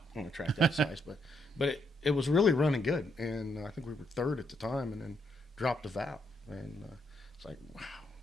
on a track that size, but it was really running good, and I think we were third at the time, and then dropped the valve, and it's like, wow,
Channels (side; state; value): both; normal; correlation 0.76